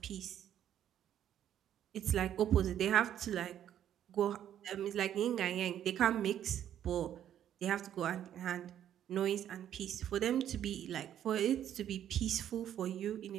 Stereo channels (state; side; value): quieter; left; 10.6 dB